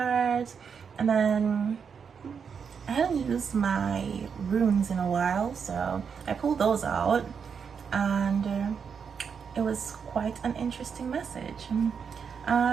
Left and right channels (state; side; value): quieter; left; 6.5 dB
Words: and then I hadn't used my runes in a while, so I pulled those out, and it was quite an interesting message.